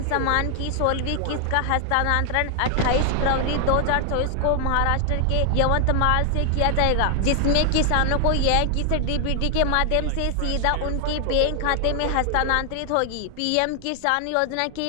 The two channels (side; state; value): both; different; correlation 0.00